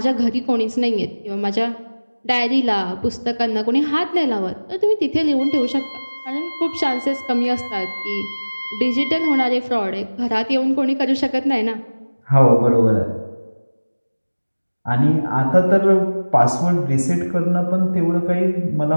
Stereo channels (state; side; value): inverted; both; correlation -1.00